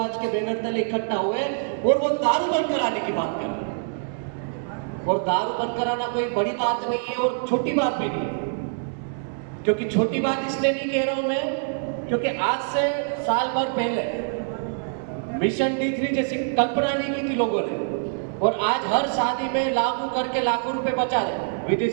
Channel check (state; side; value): silent; left; digital silence